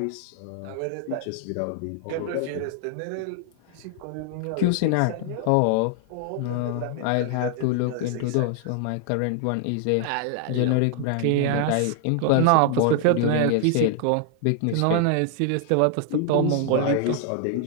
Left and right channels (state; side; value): different; both; correlation 0.00